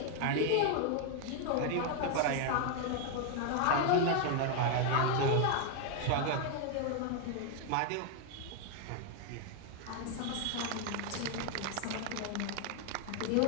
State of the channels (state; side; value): different; both; correlation 0.01